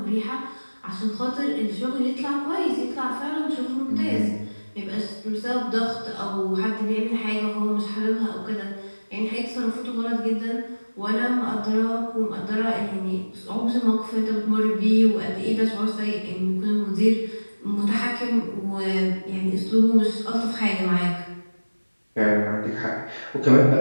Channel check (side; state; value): both; inverted; correlation -1.00